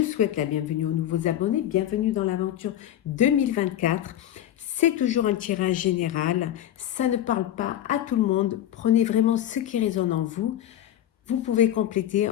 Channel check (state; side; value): quieter; right; 11.7 dB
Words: souhaite la bienvenue aux nouveaux abonnés. Bienvenue dans l'aventure 2024. C'est toujours un tirage général. Ça ne parle pas à tout le monde. Prenez vraiment ce qui résonne en vous. Vous pouvez compléter